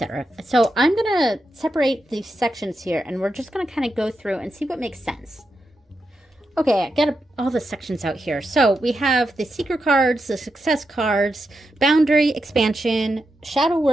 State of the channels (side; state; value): both; normal; correlation 0.87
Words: So I'm gonna separate these sections here, and we're just gonna kind of go through and see what makes sense. Okay, I got all the sections out here. So we have the secret cards, the success cards, boundary, expansion, shadow